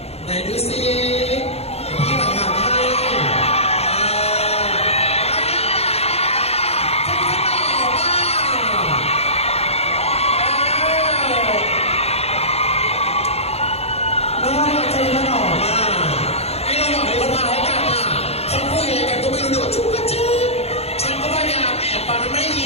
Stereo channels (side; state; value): right; late; 0.30 ms